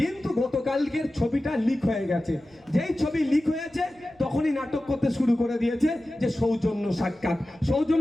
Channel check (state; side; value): noise; right; rumble, 29 dB below the sound